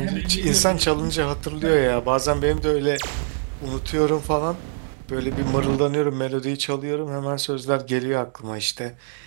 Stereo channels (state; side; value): silent; left; digital silence